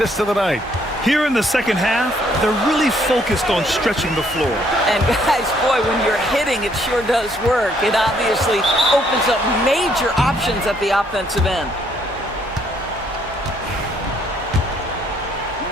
of the night. Here in the second half, they're really focused on stretching the floor. And guys, boy, when you're hitting, it sure does work. It obviously opens up major options at the offensive end.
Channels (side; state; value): both; normal; correlation 0.68